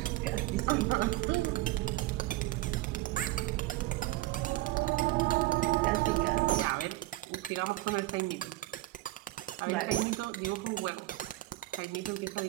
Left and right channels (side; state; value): left; quieter; 17.7 dB